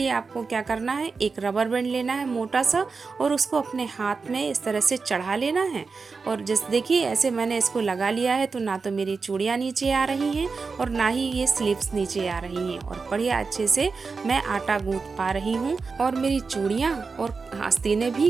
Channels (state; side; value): quieter; left; 4.6 dB